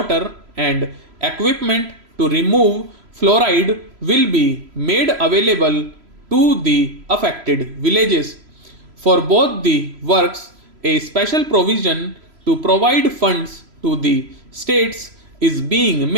and equipment to remove fluoride will be made available to the affected villages. For both the works, a special provision to provide funds to the states is being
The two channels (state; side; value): late; left; 3.0 ms